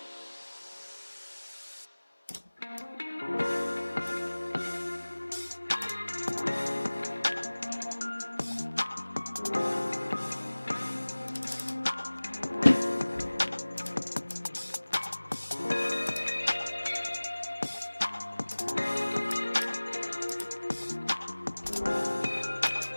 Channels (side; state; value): both; inverted; correlation -1.00